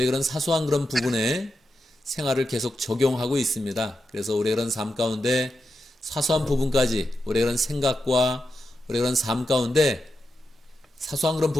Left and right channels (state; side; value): normal; both; correlation 0.88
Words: 그런 사소한 그런 부분에 생활을 계속 적용하고 있습니다. 그래서 우리의 그런 삶 가운데 사소한 부분까지 우리의 그런 생각과 우리의 그런 삶 가운데 사소한 그런